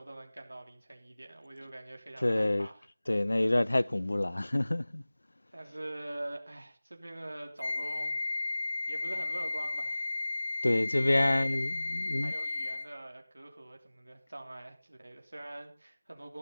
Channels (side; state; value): both; inverted; correlation -0.99